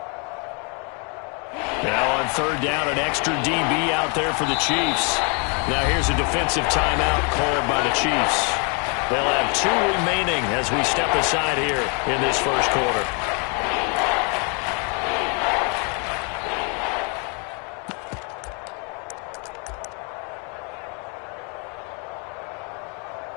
Now on 3rd down, an extra DB out there for the Chiefs. Now here's a defensive timeout called by the Chiefs. They'll have 2 remaining as we step aside here in this first quarter.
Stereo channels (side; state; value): right; quieter; 36.1 dB